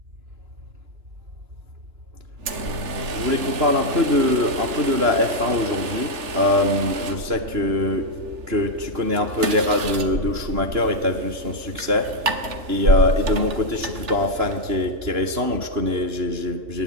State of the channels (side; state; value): left; late; 3.4 ms